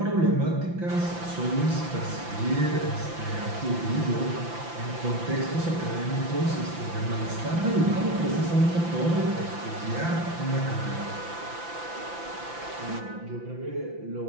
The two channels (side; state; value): left; late; 5.9 ms